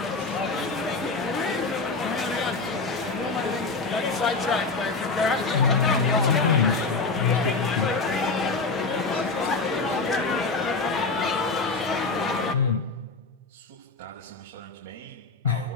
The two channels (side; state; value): right; quieter; 4.0 dB